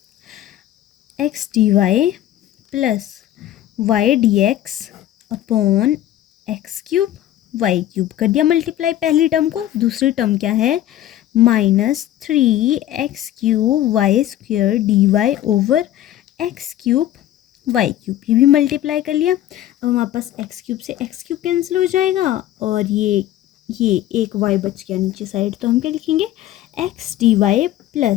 x dy plus y dx upon x cube y cube, कर दिया मल्टीप्लाई पहली टर्म को। दूसरी टर्म क्या है, -3x³ y² dy over x cube y cube, ये भी मल्टीप्लाई कर लिया। अब हमारे पास x क्यूब से x क्यूब कैंसिल हो जाएगा और ये एक y बच गया नीचे साइड, तो हम क्या लिखेंगे, x dy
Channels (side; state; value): right; quieter; 13.0 dB